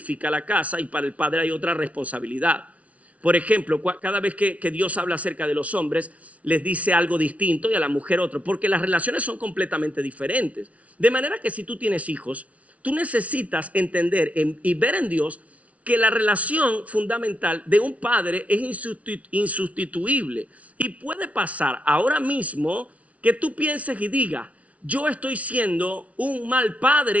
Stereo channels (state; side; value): late; left; 0.066 ms